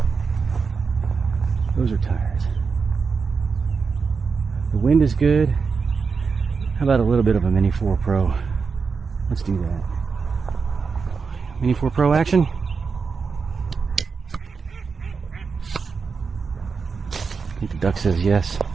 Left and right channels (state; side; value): quieter; left; 5.2 dB